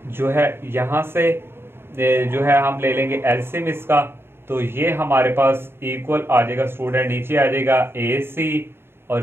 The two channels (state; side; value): late; left; 0.11 ms